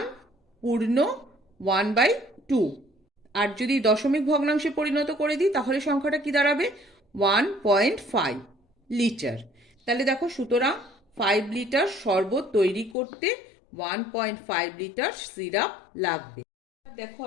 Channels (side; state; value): right; drops out; at 13.0 s